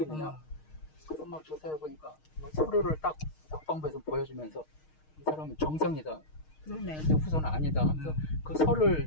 있느냐. 그래서 막 조사해보니까 서류를 딱 국방부에서 보여주면서 이 사람은 정상이다. 그러네. 근데 후손은 아니다 하면서 그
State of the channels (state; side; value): late; right; 6.5 ms